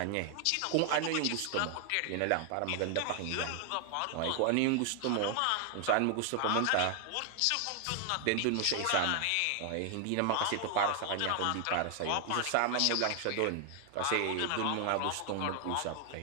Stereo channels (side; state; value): both; different; correlation 0.00